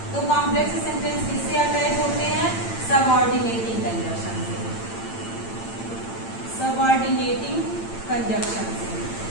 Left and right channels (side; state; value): right; late; 8.9 ms